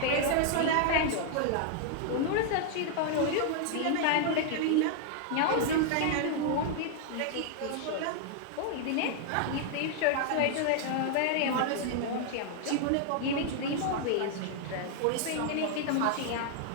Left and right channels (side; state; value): both; different; correlation 0.00